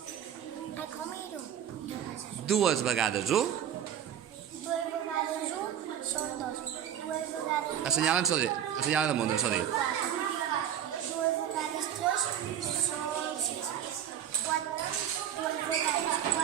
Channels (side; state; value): left; quieter; 9.8 dB